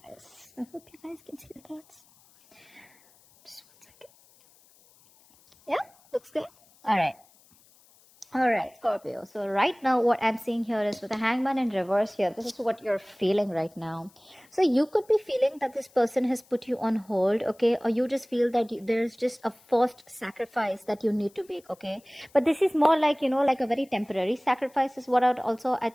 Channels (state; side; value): noise; left; hiss, 29 dB below the sound